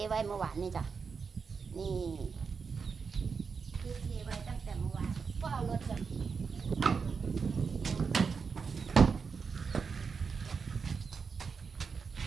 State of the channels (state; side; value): quieter; left; 5.5 dB